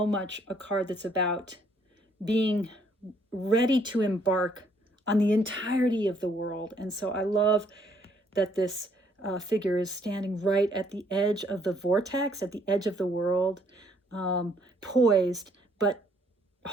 much a card that's about being ready to embark on the entirety of the world. And so I love that this figure is standing right at the edge of the vortex, at the edge of the world, poised, but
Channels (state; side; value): normal; both; correlation 0.66